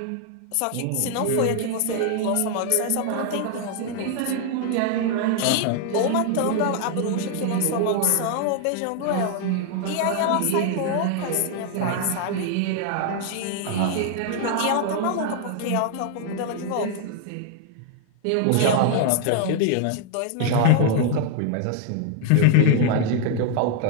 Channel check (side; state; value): both; different; correlation 0.00